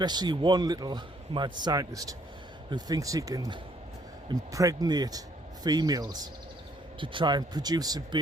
one little mad scientist who thinks he can impregnate females to try and produce a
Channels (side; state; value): both; normal; correlation 0.66